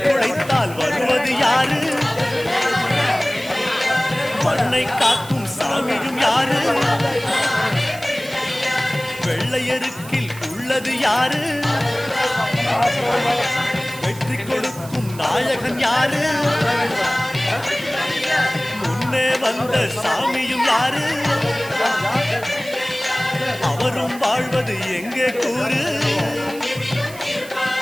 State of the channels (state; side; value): noise; right; hiss, 17 dB below the sound